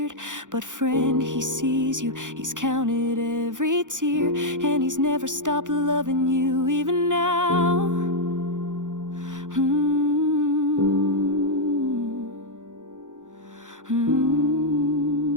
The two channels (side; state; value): left; late; 0.87 ms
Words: But friend, He sees you, He's counted every tear, and He's never stopped loving you even now.